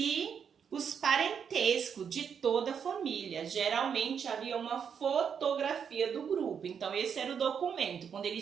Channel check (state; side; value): quieter; left; 7.3 dB